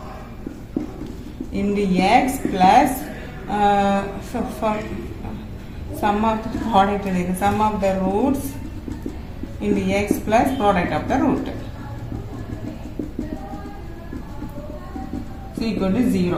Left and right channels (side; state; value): both; identical; correlation 1.00